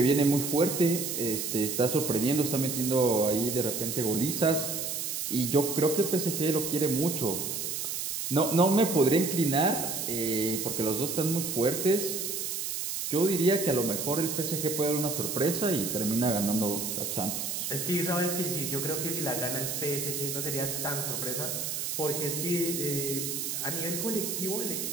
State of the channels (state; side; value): noise; right; hiss, 3 dB below the sound